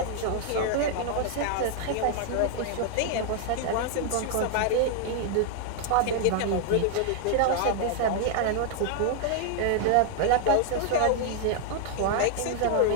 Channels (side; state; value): both; different; correlation 0.00